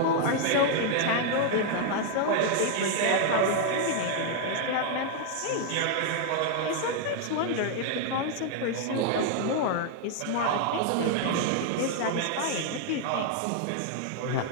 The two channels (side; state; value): both; different; correlation 0.00